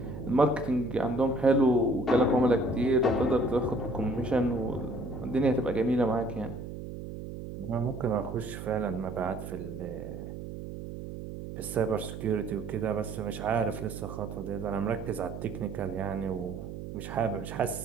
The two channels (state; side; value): noise; right; hum, 9 dB below the sound